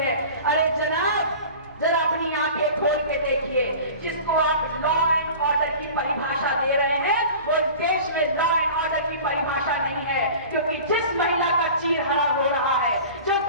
है। अरे जनाब, जरा अपनी आंखें खोल के देखिए। जिसको आप लॉ एंड ऑर्डर की परिभाषा दे रहे हैं वो इस देश में लॉ एंड ऑर्डर की परिभाषा नहीं है, क्योंकि जिस महिला का चीरहरण हो रहा है, जो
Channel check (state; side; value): inverted; both; correlation -0.39